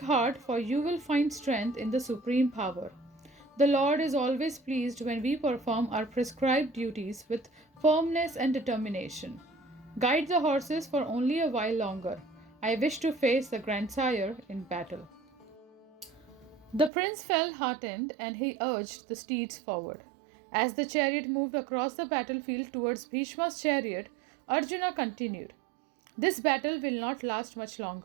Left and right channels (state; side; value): drops out; left; at 16.9 s